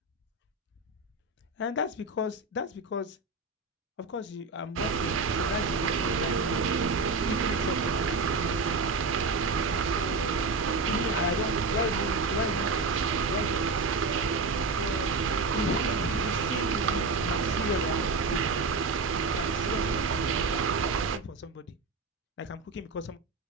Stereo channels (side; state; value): left; quieter; 3.8 dB